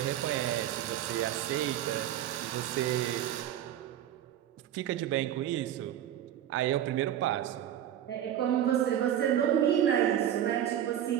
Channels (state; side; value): quieter; left; 11.0 dB